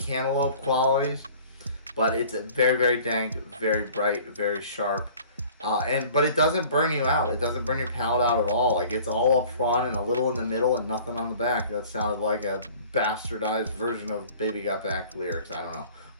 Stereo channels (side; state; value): both; inverted; correlation -0.48